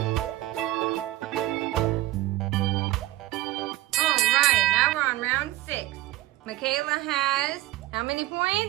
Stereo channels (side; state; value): left; quieter; 16.8 dB